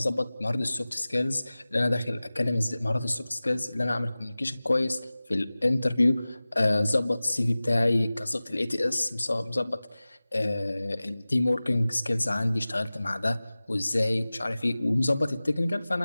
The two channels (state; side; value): inverted; both; correlation -0.98